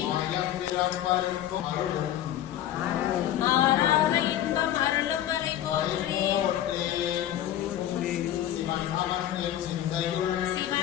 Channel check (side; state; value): right; quieter; 12.1 dB